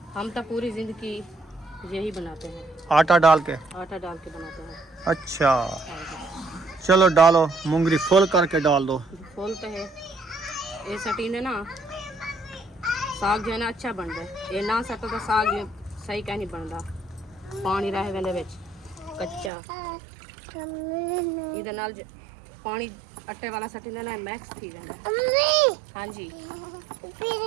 हम तो पूरी जिंदगी यही बनाते हैं, आटा डाल के। आटा डाल के बनाते हैं। अच्छा हाँ जी। चलो डालो, मुंगरी फुल करके डाल दो। खोलते हैं ये सटीने ना, साग जो है ना अच्छा बन रहा है। ये ना सटो तो साग ये सही कह नहीं बन रहा, पानी रह वेंदे विच कच्चा। इहदे नाल पानी आटे वाला सटीने ना मैक्स थी वेंदा। हाँ जी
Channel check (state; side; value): drops out; left; at 19.5 s